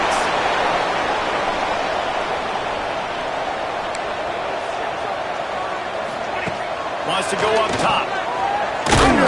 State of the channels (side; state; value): both; identical; correlation 1.00